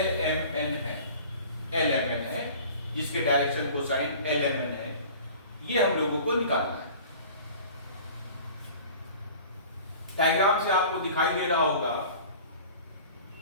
है, जिसके डायरेक्शन कोसाइन LMN है, ये हम लोगों को निकालना है। डायग्राम से आपको दिखाई दे रहा होगा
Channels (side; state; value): both; inverted; correlation -0.44